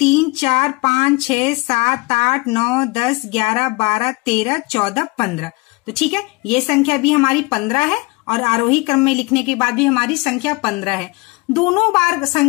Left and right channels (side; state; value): right; quieter; 24.6 dB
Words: 4 5 6 7 8 9 10 11 12 13 14 15। तो ठीक है, ये संख्या भी हमारी 15 है और आरोही क्रम में लिखने के बाद भी हमारी संख्या 15 है। दोनों बार